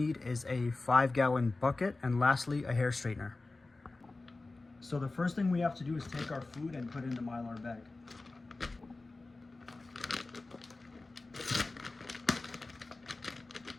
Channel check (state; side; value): quieter; right; 3.3 dB